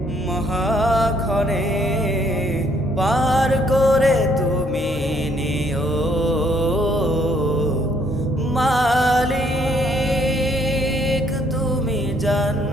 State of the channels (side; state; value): both; normal; correlation 0.67